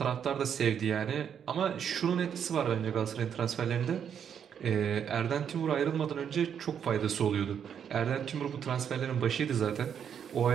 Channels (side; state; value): left; quieter; 8.2 dB